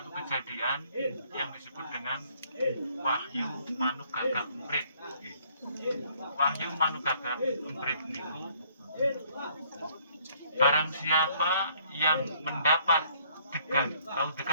kejadian yang disebut dengan Wahyu Manugagak Emprit. Wahyu Manugagak Emprit niku barang siapa yang mendapat degan, tahu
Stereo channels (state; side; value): inverted; both; correlation -0.63